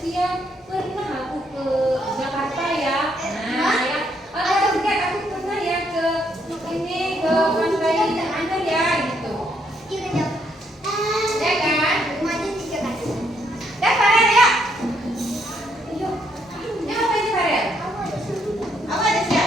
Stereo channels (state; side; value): normal; both; correlation 0.73